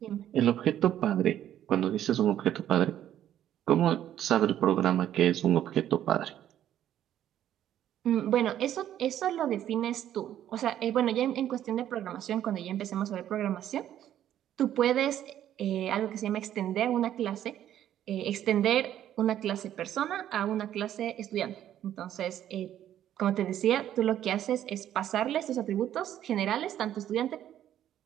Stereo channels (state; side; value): quieter; left; 11.3 dB